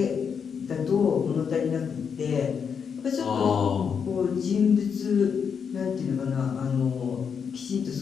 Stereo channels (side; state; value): right; quieter; 6.7 dB